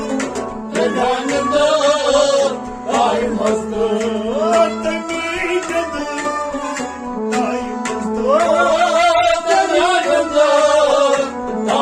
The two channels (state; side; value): identical; both; correlation 1.00